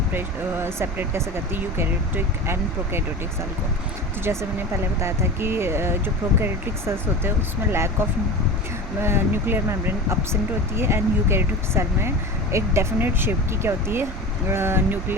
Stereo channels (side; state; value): both; normal; correlation 0.31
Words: कैसे करती है यूकैरियोटिक एंड प्रोकैरियोटिक सेल को। तो जैसे मैंने पहले बताया था कि जो प्रोकैरियोटिक सेल्स होते हैं उसमें lack of nuclear membrane absent होती है एंड यूकैरियोटिक सेल में एक डेफिनेट शेप की क्या होती है